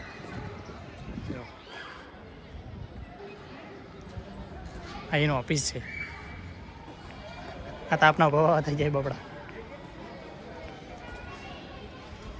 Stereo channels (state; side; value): identical; both; correlation 1.00